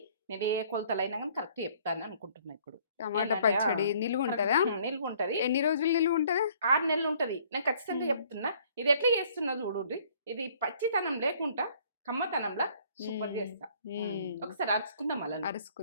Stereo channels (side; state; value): both; inverted; correlation -0.59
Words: నేను ఏ కొలతలైనా కానీ కరెక్ట్ చెప్తాను అనుకుంటున్నా. ఇప్పుడు టమాటా పచ్చడి నిలువ ఉంటుందా? నిల్వ ఉంటుంది. ఎన్ని రోజులు నిలువ ఉంటుందా? 6 నెలలు ఉంటుంది. నేను ఖచ్చితంగా చెప్తున్నా. ఇది ఎట్లా చేస్తున్నా చూడండి. ఇది పచ్చితనం లేకుండా కమ్మతనంలా సూపర్ చేస్తా. ఒకసారి అరుచుకుందాం, అలా